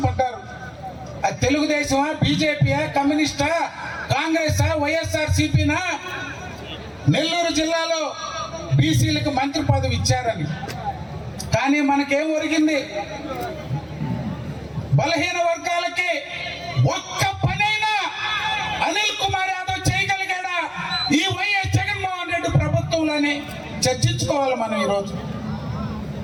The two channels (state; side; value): identical; both; correlation 1.00